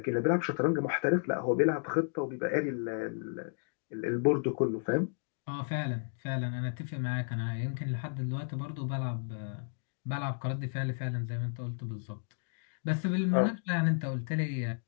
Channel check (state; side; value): silent; right; digital silence